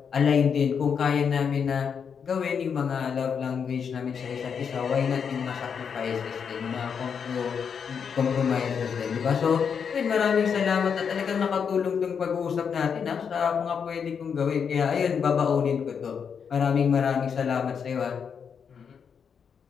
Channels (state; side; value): quieter; right; 6.8 dB